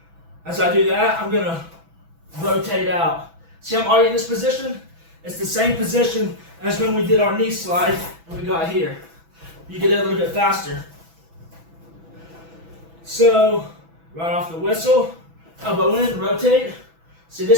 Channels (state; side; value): late; left; 6.1 ms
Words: As I do that, I'm going to rotate out. See, I'm already in this position. It's the same position as when we did our knee slide and we got here. You get it a little bit faster. So, right off the whistle, elbow in, rotate. See